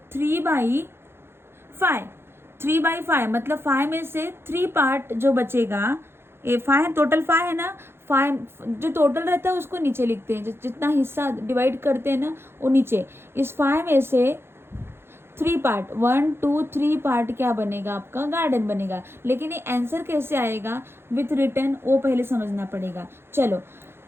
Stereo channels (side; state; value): left; late; 0.11 ms